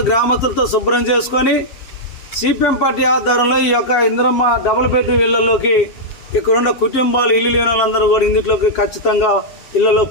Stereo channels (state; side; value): late; right; 7.3 ms